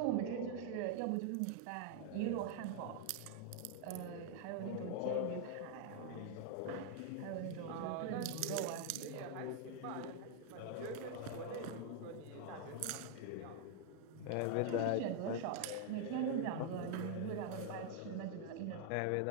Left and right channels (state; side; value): different; both; correlation 0.00